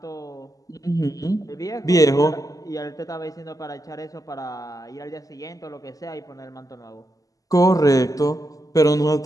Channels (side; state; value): right; late; 0.17 ms